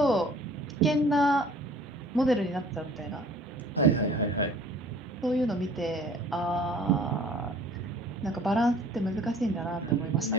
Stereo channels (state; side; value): normal; both; correlation 0.51